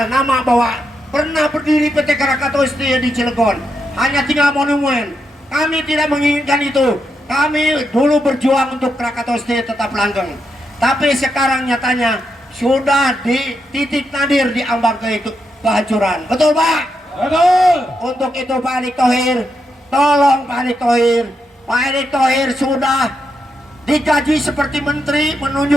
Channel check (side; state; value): both; normal; correlation 0.83